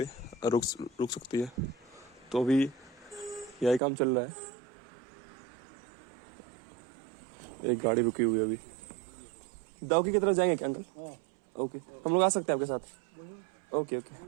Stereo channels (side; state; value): left; drops out; at 3.8 s